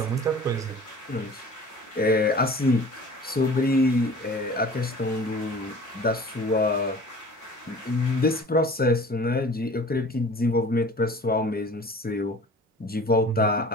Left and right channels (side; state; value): both; normal; correlation 0.44